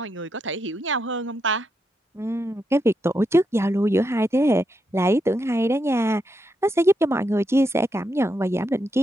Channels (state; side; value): normal; both; correlation 0.82